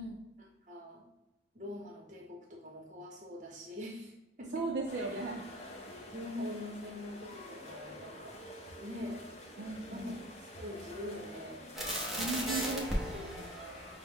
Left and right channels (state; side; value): normal; both; correlation 0.41